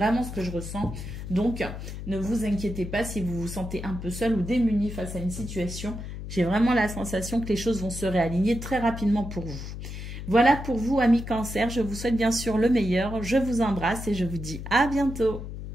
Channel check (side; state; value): left; noise; hum, 8 dB below the sound